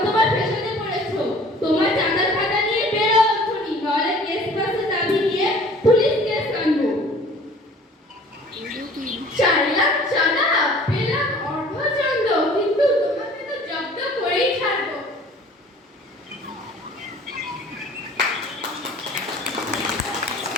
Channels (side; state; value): both; normal; correlation 0.49